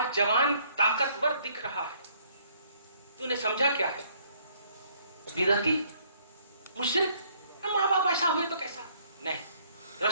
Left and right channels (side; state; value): both; inverted; correlation -0.64